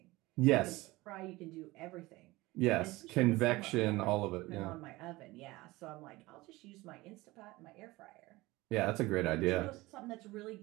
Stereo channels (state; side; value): quieter; left; 20.4 dB